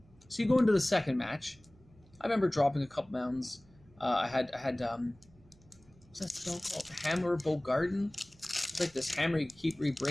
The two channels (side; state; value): right; noise; hum, 28 dB below the sound